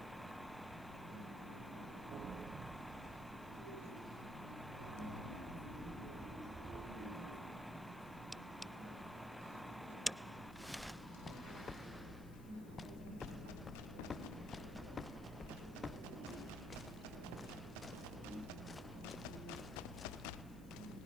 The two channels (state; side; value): noise; left; hiss, 20 dB below the sound